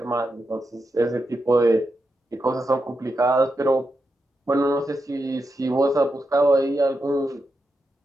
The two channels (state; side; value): normal; both; correlation 0.87